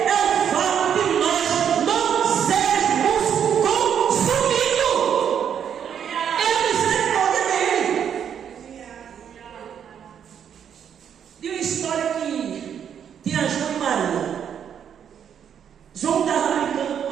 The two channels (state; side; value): quieter; left; 8.4 dB